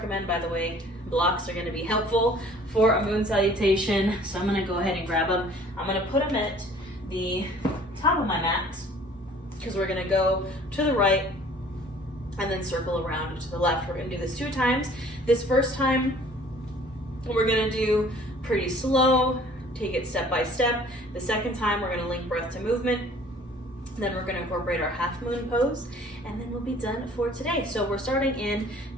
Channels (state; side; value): normal; both; correlation 0.52